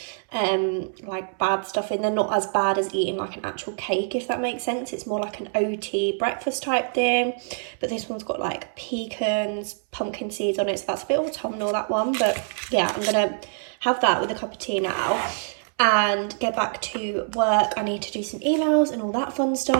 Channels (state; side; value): silent; left; 62 dB below the other